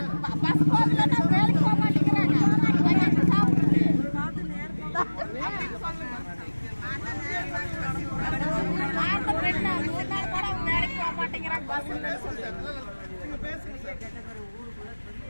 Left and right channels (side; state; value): both; inverted; correlation -1.00